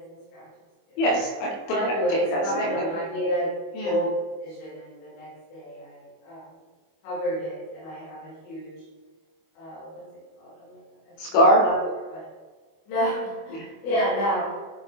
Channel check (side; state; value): right; late; 25 ms